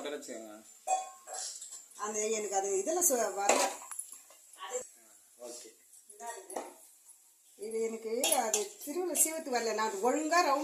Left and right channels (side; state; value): both; identical; correlation 1.00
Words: வச்சுக்கோங்க. அந்த எனக்கு அது இதெல்லாம் வரல. ஓகே, இது எனக்கு அது திருவிழா சீவத்து வரல. நான் ஒழுங்கா